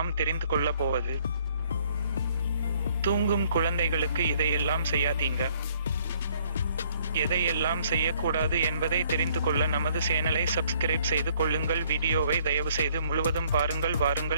தெரிந்து கொள்ளப் போவது, தூங்கும் குழந்தைகளுக்கு இதையெல்லாம் செய்யாதீங்க. எதையெல்லாம் செய்யக்கூடாது என்பதை தெரிந்து கொள்ள நமது சேனலை சப்ஸ்கிரைப் செய்து கொள்ளுங்கள். வீடியோவை தயவு செய்து முழுவதும் பாருங்கள்.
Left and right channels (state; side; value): inverted; both; correlation -0.63